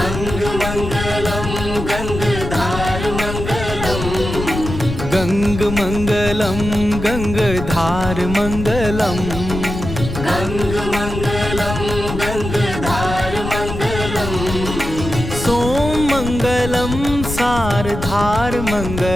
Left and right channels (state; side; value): noise; left; rumble, 6 dB below the sound